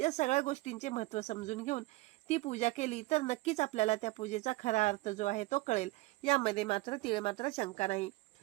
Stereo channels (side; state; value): left; quieter; 20.5 dB